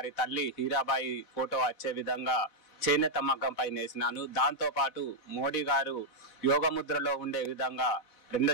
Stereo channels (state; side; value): late; right; 4.1 ms